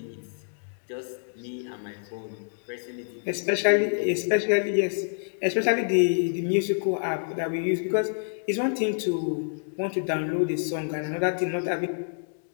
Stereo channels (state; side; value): silent; right; digital silence